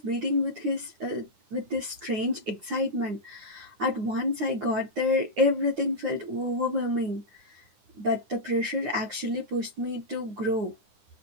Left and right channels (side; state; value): left; late; 9.8 ms